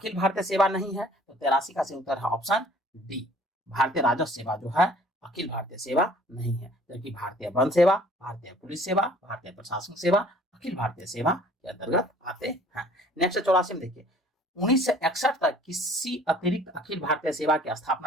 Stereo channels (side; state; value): both; normal; correlation 0.53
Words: भारतीय सेवा नहीं है, तो 83 का सही उत्तर है ऑप्शन डी, भारतीय राजस्व सेवा जो है अखिल भारतीय सेवा नहीं है, जबकि भारतीय वन सेवा, भारतीय पुलिस सेवा, भारतीय प्रशासनिक सेवा अखिल भारतीय सेवा के अंतर्गत आते हैं। नेक्स्ट 84 में देखिए, 1961 तक किसी अतिरिक्त अखिल भारतीय सेवा की